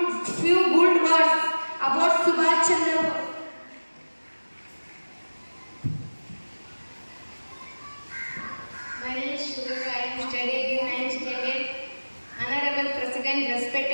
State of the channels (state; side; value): inverted; both; correlation -1.00